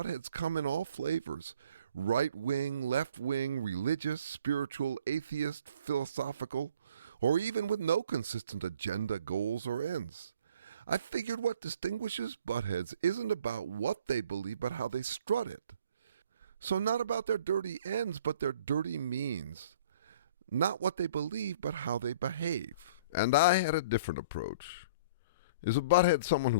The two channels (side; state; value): both; inverted; correlation -0.53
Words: come in all flavors. Right-wing, left-wing, religious, spiritual, atheist, philosophical, or even with no consistent agenda, goals, or ends. I figured what distinguishes buttheads isn't about what they believe, but how they strut it. So not about their dirty ends, but their dirty means. Not what they believe, but how they behave. And I had a different approach. Is a butthead someone